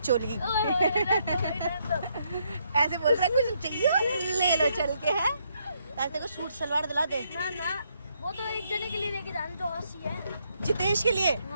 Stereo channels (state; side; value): inverted; both; correlation -0.74